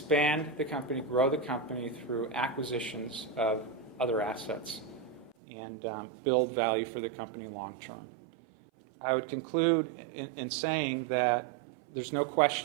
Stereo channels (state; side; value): drops out; left; at 5.4 s